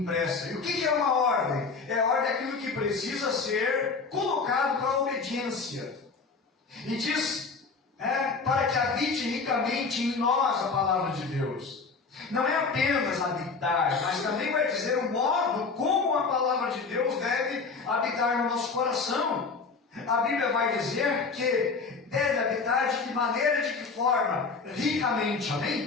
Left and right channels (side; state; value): right; quieter; 4.6 dB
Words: E o que é uma ordem? É a ordem daquilo que precisa ser colocado para a obediência. E diz, para que habite ricamente em nós a palavra de Deus. Não é apenas habitar, mas também vai dizer o modo como a palavra de Deus deve habitar no nosso coração. A Bíblia vai dizer que deve habitar de que maneira, de que forma? Ricamente,